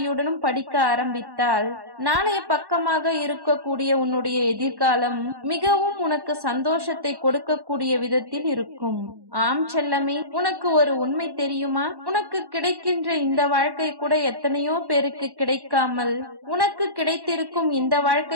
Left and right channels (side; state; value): left; late; 1.1 ms